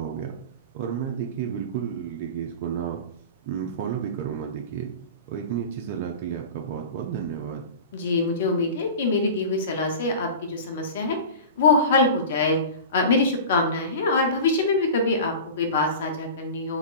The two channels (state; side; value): inverted; both; correlation -0.33